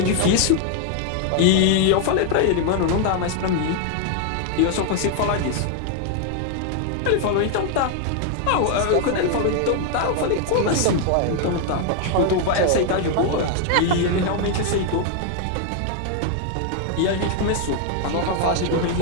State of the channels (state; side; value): different; both; correlation 0.00